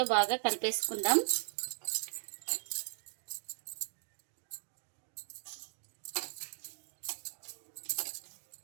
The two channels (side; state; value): left; silent; digital silence